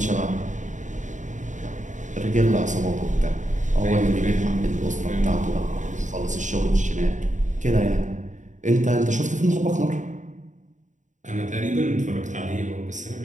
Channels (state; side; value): late; left; 0.36 ms